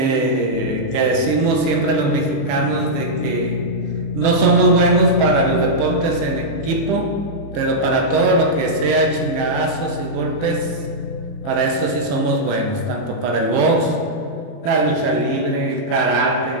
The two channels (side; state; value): right; late; 30 ms